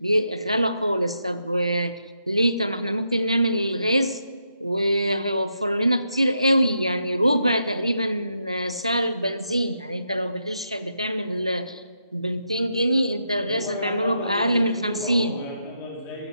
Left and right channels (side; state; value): both; inverted; correlation -0.81